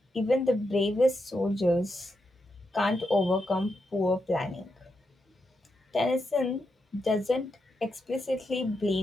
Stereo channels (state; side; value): normal; both; correlation 0.84